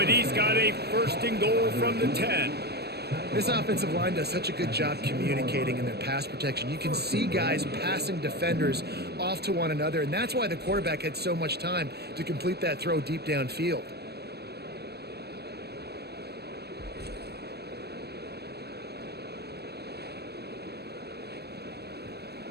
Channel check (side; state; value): left; late; 0.47 ms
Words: he's got a 1st and goal from the 10. This offensive line does such a good job communicating in their pass protection. You can see guys passing defenders off to one another, and that's why the quarterback had so much time to complete that throw deep downfield.